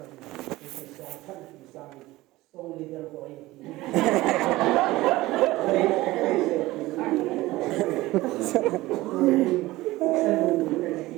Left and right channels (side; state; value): left; quieter; 18.5 dB